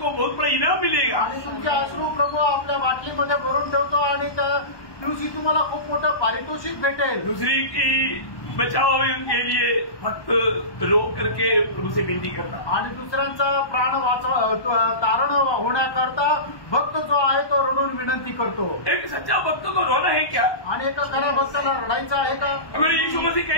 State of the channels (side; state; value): right; late; 1.2 ms